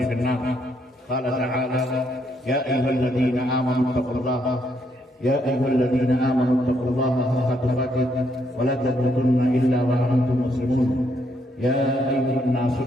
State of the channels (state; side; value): normal; both; correlation 0.74